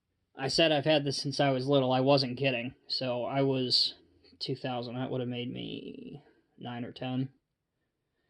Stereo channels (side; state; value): both; identical; correlation 1.00